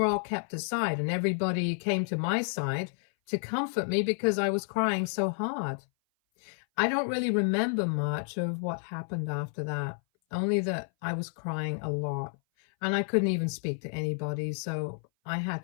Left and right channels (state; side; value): silent; right; 57 dB below the other